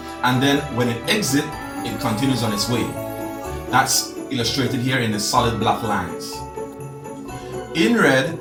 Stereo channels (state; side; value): identical; both; correlation 1.00